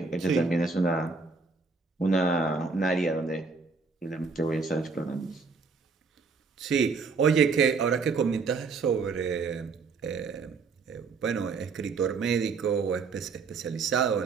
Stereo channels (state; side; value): quieter; left; 4.6 dB